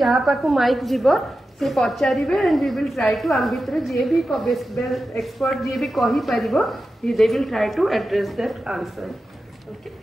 पाकु माइक जीवो से पचारिबे and we will try to आम भितर जे भी एक्सपर्ट जे भी कहि परिबो they will try to address that answer okay.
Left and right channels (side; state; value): both; normal; correlation 0.92